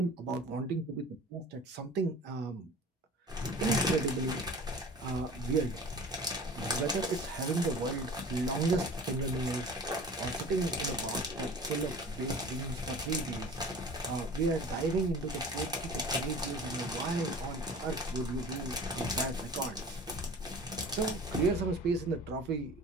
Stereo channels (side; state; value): both; normal; correlation 0.41